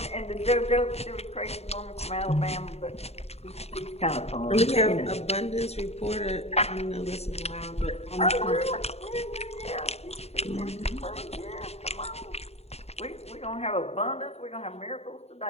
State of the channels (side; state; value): right; late; 0.30 ms